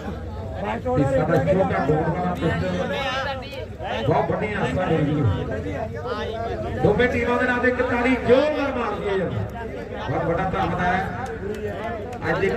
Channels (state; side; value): identical; both; correlation 1.00